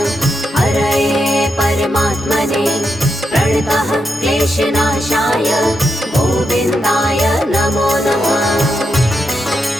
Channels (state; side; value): normal; both; correlation 0.84